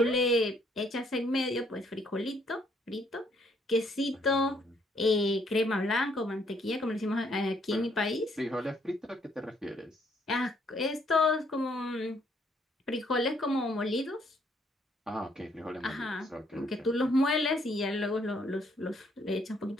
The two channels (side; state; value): both; normal; correlation 0.68